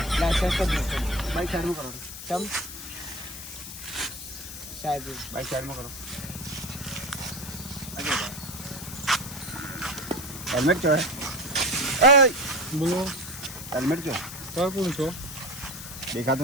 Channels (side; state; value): left; noise; hiss, 10 dB below the sound